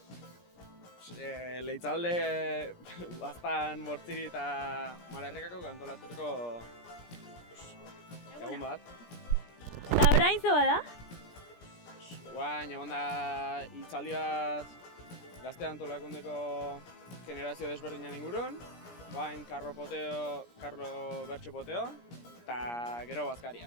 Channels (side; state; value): right; late; 17 ms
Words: Leitzalde baztan bortziri eta malerrekako kantolatuteko egun bat. Eta orain zo bada? Guain, egon da hitzaldi bat gazte antolakundeko generazio desberdinan ingurun. Guain, Karlo Bertxo Poteo, eta gero